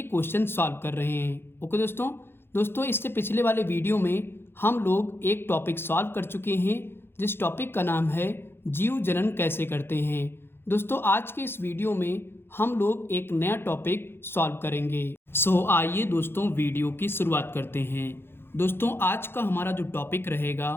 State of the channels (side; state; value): right; late; 0.11 ms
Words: क्वेश्चन सॉल्व कर रहे हैं। ओके दोस्तों, इससे पिछले वाले वीडियो में हम लोग एक टॉपिक सॉल्व कर चुके हैं, जिस टॉपिक का नाम है जीव जनन कैसे करते हैं। दोस्तों, आज के इस वीडियो में हम लोग एक नया टॉपिक सॉल्व करेंगे। आइए दोस्तों, वीडियो की शुरुआत करते हैं। दोस्तों, आज का हमारा जो टॉपिक रहेगा